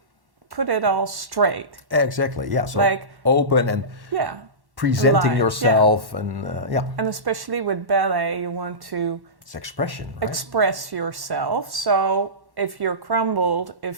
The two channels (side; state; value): left; late; 1.1 ms